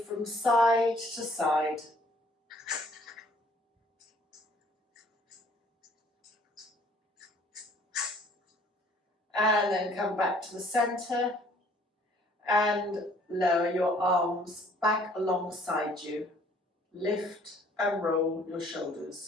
side to side. And then come back to the center and lower your arms back alongside you. Lift and roll your shoulders.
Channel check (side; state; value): both; normal; correlation 0.58